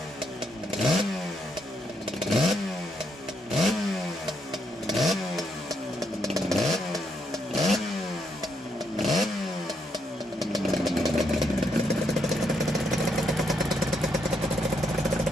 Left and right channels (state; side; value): normal; both; correlation 0.76